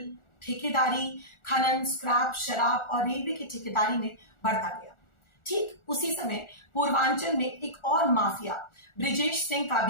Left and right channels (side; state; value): right; late; 1.4 ms